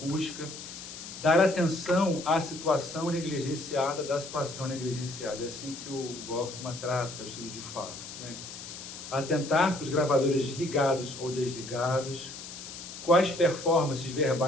dar atenção à situação negligenciada da situação negligenciada. É assim que o Goffman trata o estudo de fala, né? Atentar para os gravadores ligados ou desligados, quais performances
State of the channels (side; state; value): left; noise; hiss, 11 dB below the sound